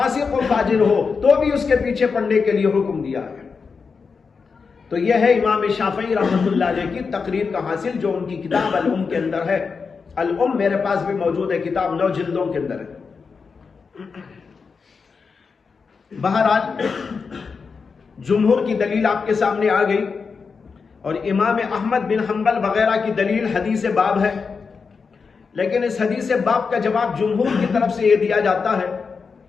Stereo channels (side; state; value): right; quieter; 5.2 dB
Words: و فاجر ہو تو بھی اس کے پیچھے پڑھنے کے لیے حکم دیا ہے. تو یہ ہے امام شافعی رحمۃ اللہ علیہ کی تقریر کا حاصل جو ان کی کتاب الام کے اندر ہے. الام میرے پاس بھی موجود ہے، کتاب 9 جلدوں کے اندر ہے. بہرحال جمہور کی دلیل آپ کے سامنے آ گئی اور امام احمد بن حنبل وغیرہ کی دلیل حدیث باب ہے. لیکن اس حدیث باب کا جواب جمہور کی طرف سے یہ دیا جاتا ہے